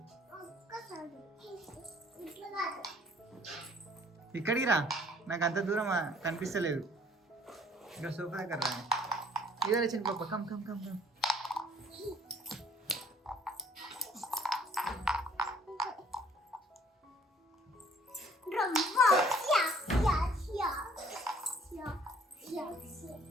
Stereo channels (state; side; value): normal; both; correlation 0.58